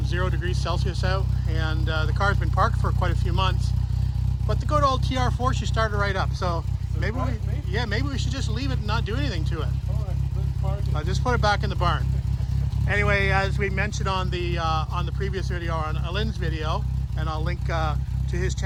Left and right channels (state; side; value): identical; both; correlation 1.00